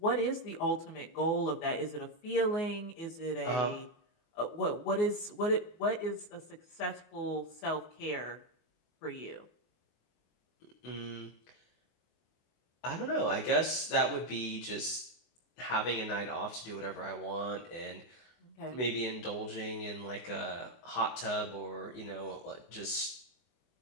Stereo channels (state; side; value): late; right; 24 ms